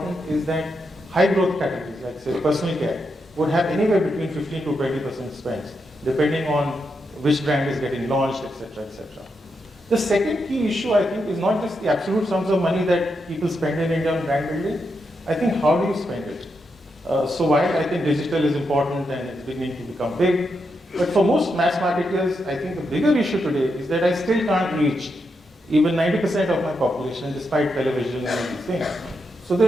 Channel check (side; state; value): both; normal; correlation 0.84